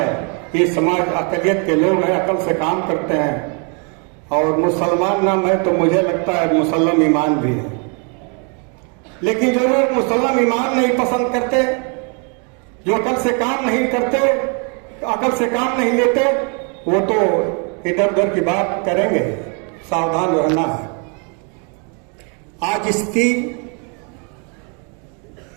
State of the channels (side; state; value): left; quieter; 37.1 dB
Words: ये समाज अकलियत के लोग हैं, अकल से काम करते हैं, और मुसलमान नाम है तो मुझे लगता है मुसलम ईमान भी है। लेकिन जो लोग मुसलम ईमान नहीं पसंद करते, जो अकल से काम नहीं करते, अकल से काम नहीं लेते, वो तो इधर उधर की बात करेंगे। सावधान रहना है। आज इसकी